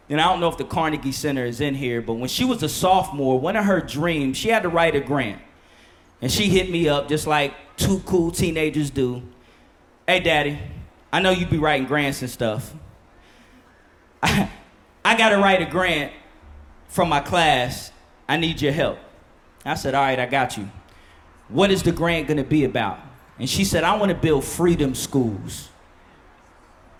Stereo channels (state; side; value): identical; both; correlation 1.00